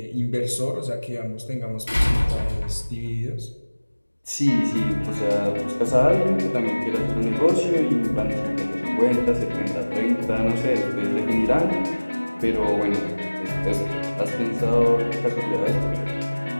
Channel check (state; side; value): inverted; both; correlation -1.00